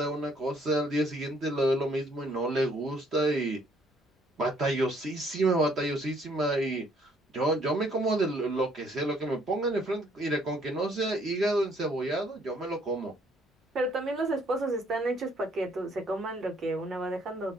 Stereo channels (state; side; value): normal; both; correlation 0.65